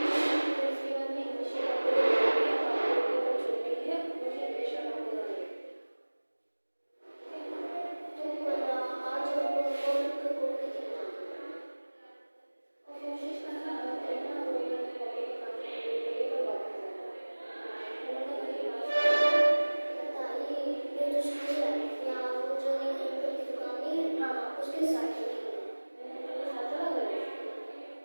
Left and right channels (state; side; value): inverted; both; correlation -1.00